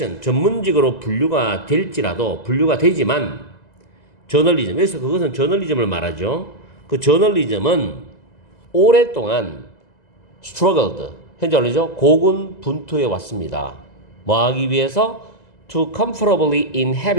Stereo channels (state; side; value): late; right; 2.0 ms